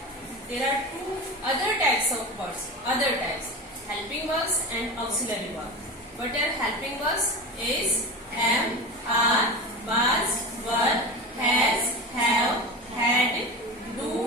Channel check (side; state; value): both; normal; correlation 0.27